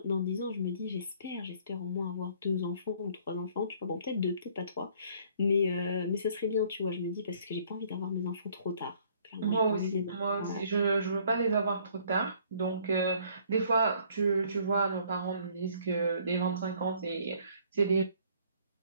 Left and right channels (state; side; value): inverted; both; correlation -0.60